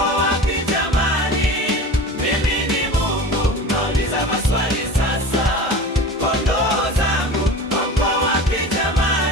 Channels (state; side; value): normal; both; correlation 0.34